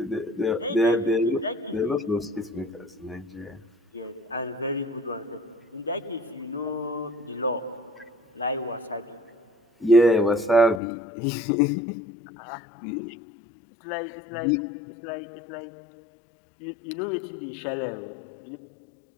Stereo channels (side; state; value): right; drops out; at 10.8 s